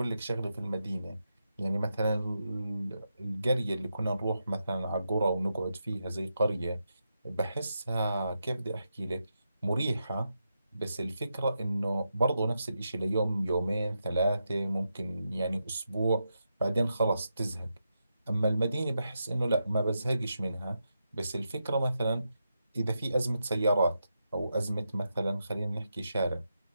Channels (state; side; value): inverted; both; correlation -0.86